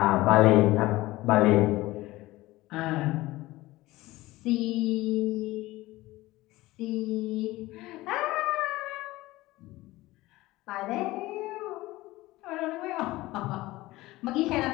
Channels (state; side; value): quieter; right; 18.6 dB